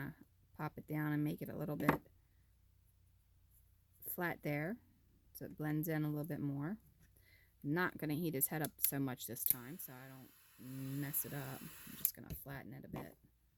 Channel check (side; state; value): both; identical; correlation 1.00